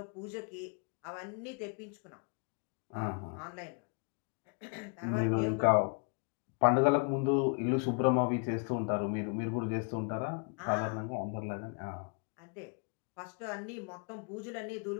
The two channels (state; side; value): quieter; right; 38.0 dB